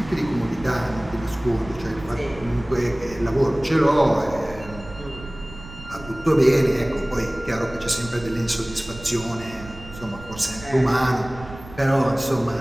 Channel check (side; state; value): right; noise; rumble, 16 dB below the sound